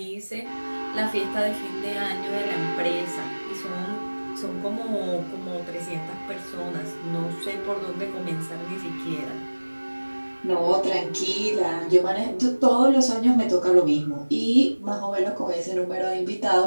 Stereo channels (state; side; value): inverted; both; correlation -1.00